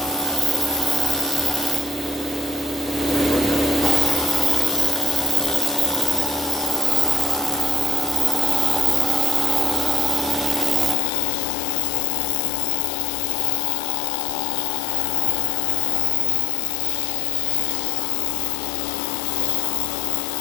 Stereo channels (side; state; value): right; drops out; at 11.0 s